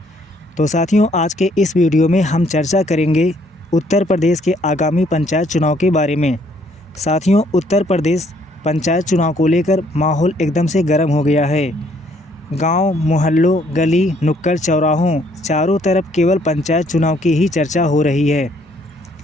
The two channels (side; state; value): both; normal; correlation 0.66